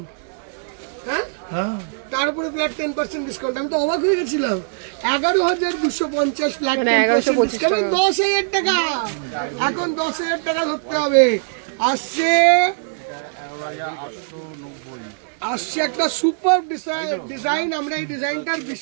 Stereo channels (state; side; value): silent; left; digital silence